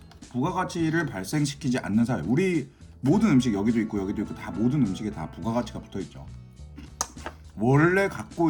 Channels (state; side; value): identical; both; correlation 1.00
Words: 부가가치를 발생시키지 않는 사회, 우리 모든 음식, 여기도 있고 다 모든 음식에 다 부가가치가 붙어있죠. 원래